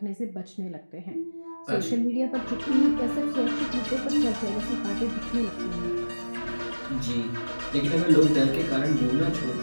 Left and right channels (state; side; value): inverted; both; correlation -1.00